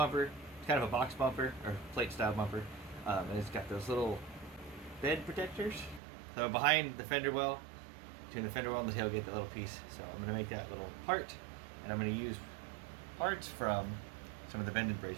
It's kind of a box bumper or plate style bumper, and it's got those little bed protectors. So behind the fender well, between the fender well and the tailgate, that little piece. So I'm going to make that little part, and I'm going to use parts from some of the bend and braze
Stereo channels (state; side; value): drops out; left; at 6.0 s